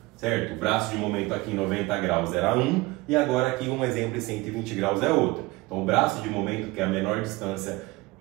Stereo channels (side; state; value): left; quieter; 21.6 dB